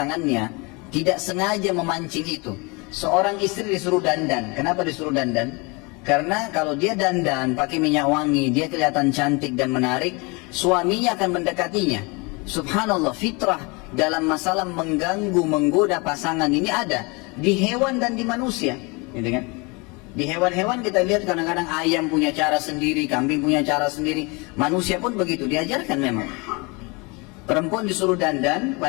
tidak sengaja memancing itu. Seorang istri disuruh dandan. Kenapa disuruh dandan? Karena kalau dia dandan pakai minyak wangi, dia kelihatan cantik dan menarik, suaminya akan mendekatinya. Subhanallah, fitrah dalam masalah mengganggu, menggoda pasangan ini ada di hewan dan di manusia, gitu kan? Di hewan-hewan kita lihat kadang-kadang ayam punya cara sendiri, kambing punya cara sendiri, manusia pun begitu, diajarkan memang. Perempuan disuruh dandan,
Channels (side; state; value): right; quieter; 28.4 dB